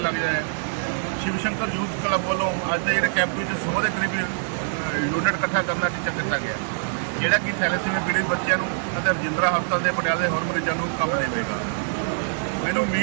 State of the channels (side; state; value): left; silent; 62 dB below the other